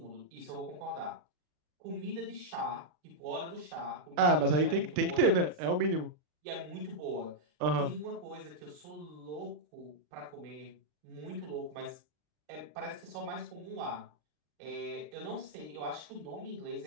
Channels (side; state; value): left; late; 40 ms